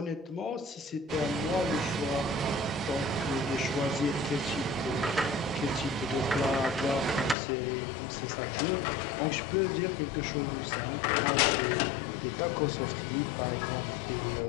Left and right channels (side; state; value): right; drops out; at 7.4 s